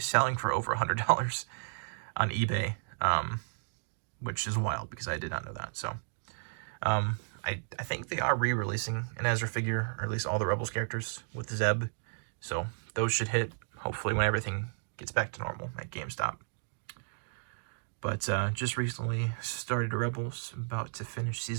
selling for over $100 on eBay, which is wild because I did not know that. So I think they are re-releasing an Ezra figure, or at least all the Rebels characters with Zeb. So those should hit, hopefully, when everything gets back to normal at GameStop. But just recently started Rebels, about to finish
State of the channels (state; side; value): silent; left; digital silence